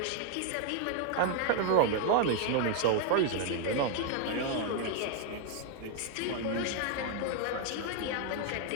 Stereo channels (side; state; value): both; different; correlation 0.00